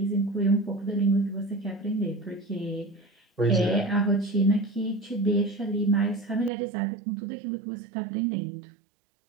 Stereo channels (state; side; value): drops out; left; at 6.5 s